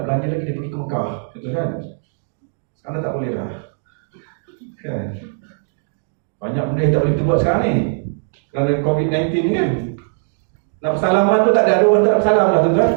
lagi dia pergi ke Mekah, betul kan? Sekarang tak boleh dah. Kan? Banyak benda yang tak boleh kita buat sekarang ni. Kerana COVID-19 kan. Nak bersalaman tu tak ada orang tak bersalam lah tuan-tuan.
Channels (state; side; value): silent; left; digital silence